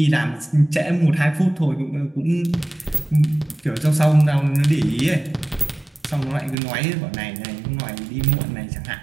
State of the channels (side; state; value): left; drops out; at 6.6 s